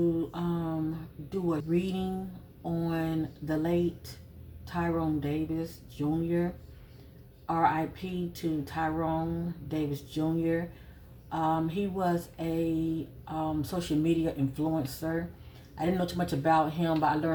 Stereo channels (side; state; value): both; identical; correlation 1.00